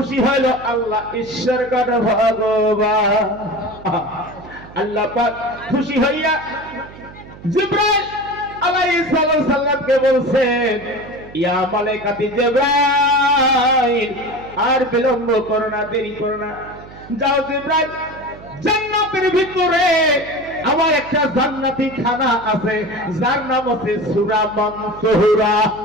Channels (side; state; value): right; noise; hum, 18 dB below the sound